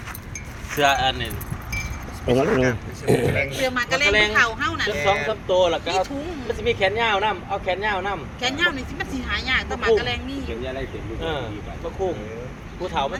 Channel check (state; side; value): identical; both; correlation 1.00